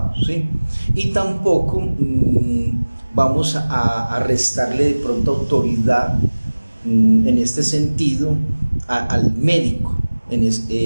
¿sí? Y tampoco vamos a restarle de pronto autoridad en este sentido al médico.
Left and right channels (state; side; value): inverted; both; correlation -1.00